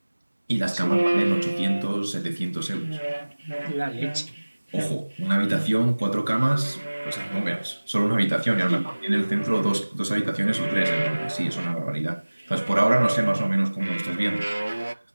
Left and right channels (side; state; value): both; inverted; correlation -1.00